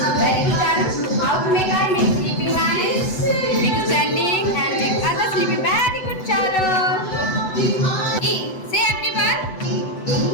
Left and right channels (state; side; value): late; right; 7.9 ms